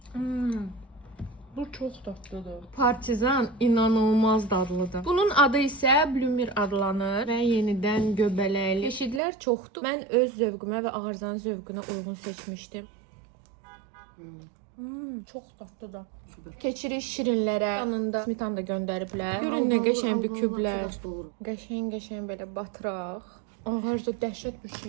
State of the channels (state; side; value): drops out; left; at 9.2 s